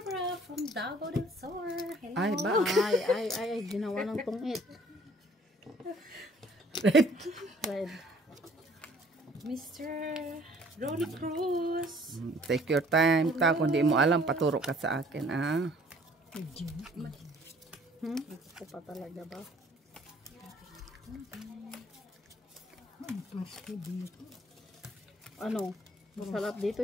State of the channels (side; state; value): both; normal; correlation 0.57